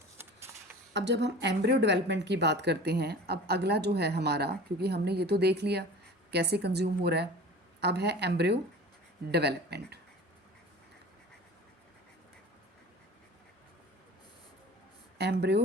अब जब हम एम्ब्रियो डेवलपमेंट की बात करते हैं, अब अगला जो है हमारा, क्योंकि हमने ये तो देख लिया कैसे कंज्यूम हो रहा है, अब है एम्ब्रियो डेवलपमेंट।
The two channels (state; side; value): normal; both; correlation 0.39